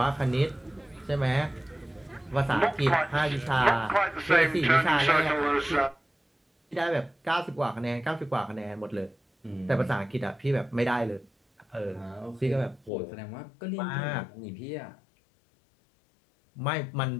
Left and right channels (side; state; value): right; drops out; at 12.9 s